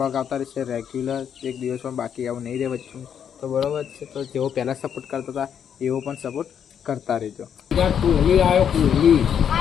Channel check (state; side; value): quieter; right; 8.3 dB